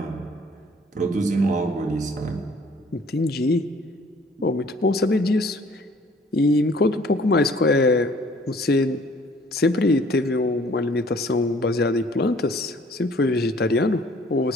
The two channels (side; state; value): both; normal; correlation 0.56